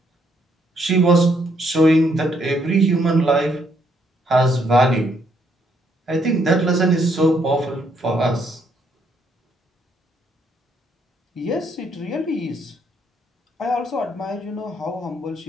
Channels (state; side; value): normal; both; correlation 0.72